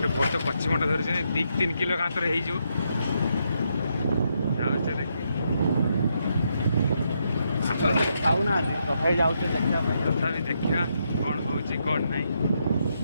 ବଡ଼ କଚିମଟା ଧରୁଛନ୍ତି 2-3 କିଲୋ କାନ୍ତର ହେଇଯିବ ଯାଉଛେ ଦେଖି ଖାଉନାହାନ୍ତି ତଥାପି ଯାଉଛେ ଦେଖିବା ପାଇଁ। ତଥାପି ଦେଖିବା କ'ଣ ହେଉଛି କ'ଣ ନାହିଁ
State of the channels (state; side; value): inverted; both; correlation -0.79